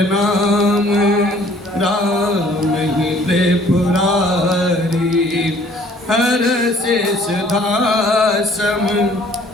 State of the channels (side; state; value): both; normal; correlation 0.57